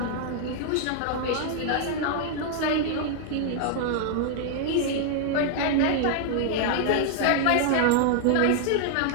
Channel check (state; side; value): different; both; correlation 0.00